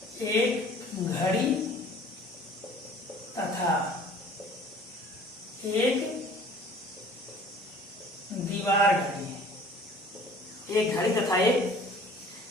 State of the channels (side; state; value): both; normal; correlation 0.50